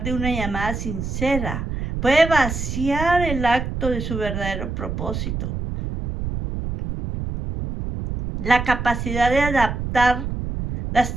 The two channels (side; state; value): right; noise; rumble, 4 dB below the sound